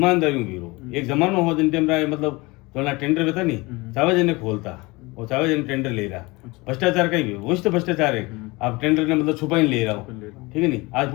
में भी रो एक जमाना हो जिन टाइम मतलब थोड़ा टेंडर बेता नहीं चावे जने खोलता और चावे जने टेंडर ले रहा भ्रष्टाचार का ही वही तो भ्रष्टाचार है आप टेंडर ने मतलब छुपा ही ले रहा हो ठीक है नहीं आज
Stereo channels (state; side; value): quieter; right; 24.0 dB